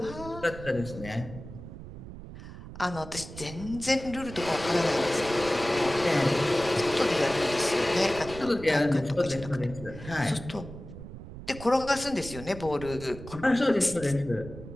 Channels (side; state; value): right; noise; rumble, 13 dB below the sound